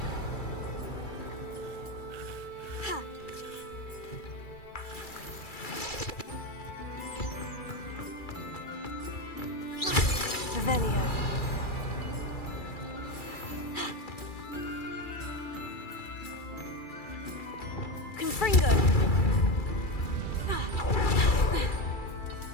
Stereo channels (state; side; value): late; right; 2.3 ms